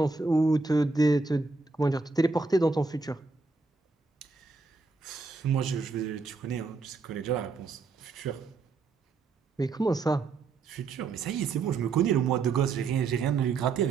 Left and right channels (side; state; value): left; quieter; 4.2 dB